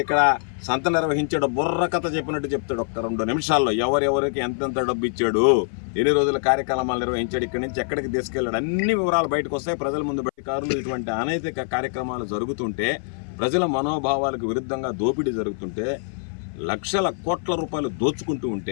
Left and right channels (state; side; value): silent; right; 57 dB below the other